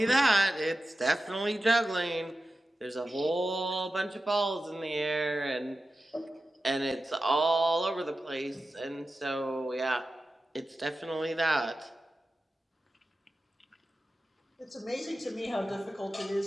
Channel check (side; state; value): both; normal; correlation 0.93